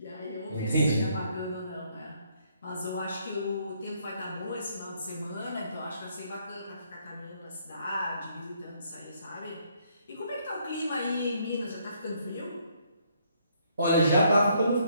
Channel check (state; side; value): inverted; both; correlation -0.69